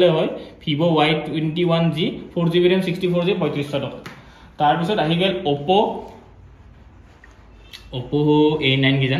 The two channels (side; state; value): both; identical; correlation 1.00